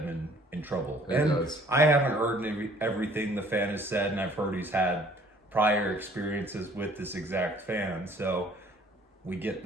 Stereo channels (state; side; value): normal; both; correlation 0.57